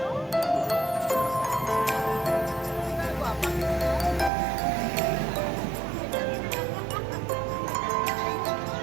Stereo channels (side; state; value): left; drops out; at 4.3 s